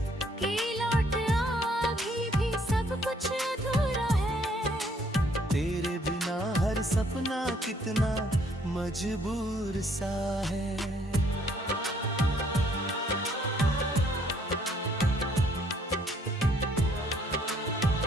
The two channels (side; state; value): both; normal; correlation 0.65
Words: कुछ अधूरा है। तेरे बिना हर सपना कितना मजबूर सा है।